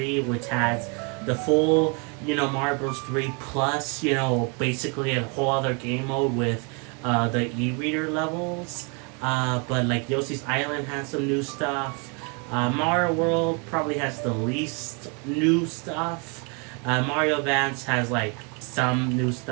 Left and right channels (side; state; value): left; quieter; 34.1 dB